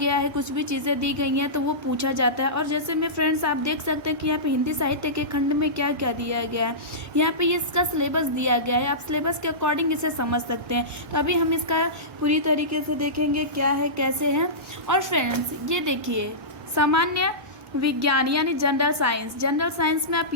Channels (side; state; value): left; late; 1.1 ms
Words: है, कुछ भी चीज़ें दी गई हैं तो वो पूछा जाता है। और जैसे में फ्रेंड्स आप देख सकते हैं कि यहाँ पे हिंदी साहित्य के खंड में क्या क्या दिया गया है। यहाँ पे इसका सिलेबस दिया गया है, आप सिलेबस के अकॉर्डिंग इसे समझ सकते हैं। तो अभी हम इसका पूरी तरीके से देखेंगे क्या है कैसे है। और फ्रेंड्स ये देखिए सामान्य विज्ञान यानी जनरल साइंस, जनरल साइंस में आप